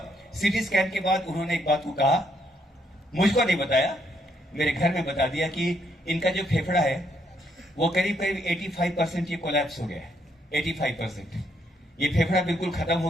सीटी स्कैन के बाद उन्होंने एक बात को कहा, मुझको नहीं बताया, मेरे घर में बता दिया कि इनका जो फेफड़ा है वो करीब करीब 85% ये कोलैप्स हो गया है। 85% ये फेफड़ा बिल्कुल खत्म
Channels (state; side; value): normal; both; correlation 0.73